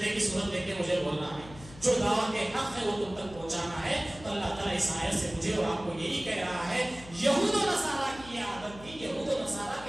کی صورت دیکھ کے مجھے بولنا ہے. جو دعوت کے حق ہے وہ تم تک پہنچانا ہے. تو اللہ تعالیٰ اس آیت سے مجھے اور آپ کو یہی کہہ رہا ہے، یہود و نصارہ کی یہ عادت تھی، یہود و نصارہ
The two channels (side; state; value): left; noise; hum, 17 dB below the sound